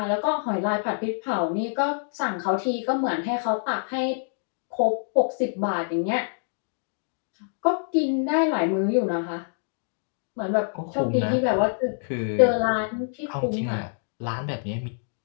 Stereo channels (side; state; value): right; silent; digital silence